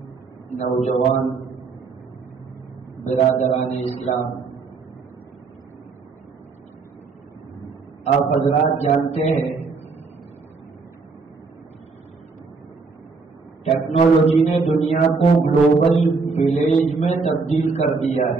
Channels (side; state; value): left; quieter; 4.4 dB